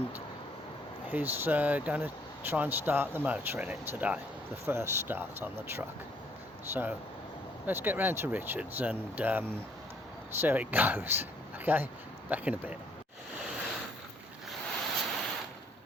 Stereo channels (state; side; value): normal; both; correlation 0.65